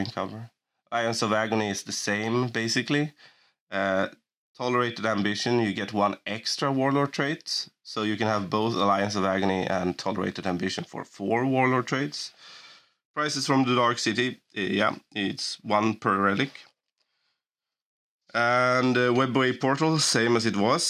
cover. Alliance of Agony is the same, basically. Tolerated Ambition, you get 1 extra Warlord trait. So you can have both Alliance of Agony and Tolerated Ambition for 4 Warlord traits. Prices from the Dark City, yeah, it's 1 per relic. And Webway Portal, same as it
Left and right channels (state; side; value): identical; both; correlation 1.00